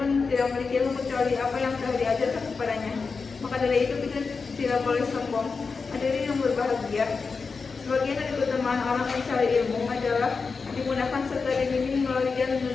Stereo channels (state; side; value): quieter; right; 4.8 dB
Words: tidak memiliki ilmu kecuali apa yang telah diajarkan kepadanya. Maka dari itu kita tidak boleh sombong. Hadirin yang berbahagia, sebagian dari keutamaan orang mencari ilmu adalah dimudahkan serta dibimbing melalui jalan